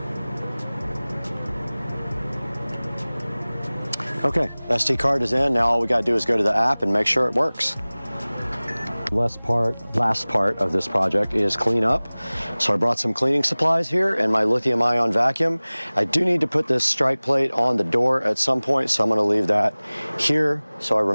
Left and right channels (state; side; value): inverted; both; correlation -1.00